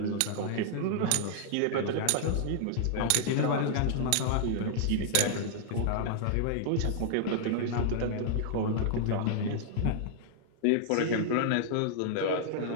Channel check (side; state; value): both; different; correlation -0.01